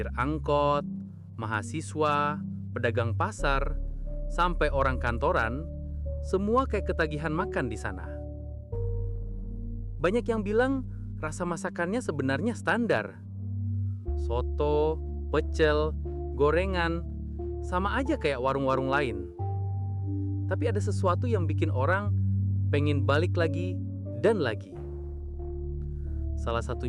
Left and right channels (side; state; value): both; identical; correlation 1.00